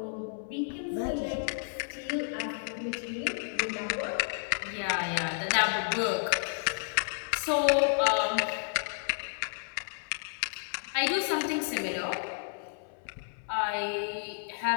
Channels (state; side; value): silent; right; 57 dB below the other